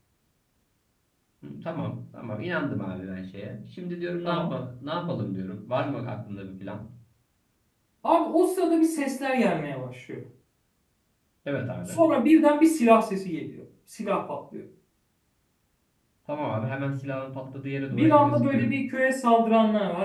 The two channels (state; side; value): identical; both; correlation 1.00